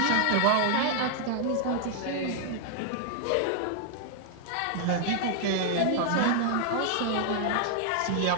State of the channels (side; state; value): both; different; correlation 0.00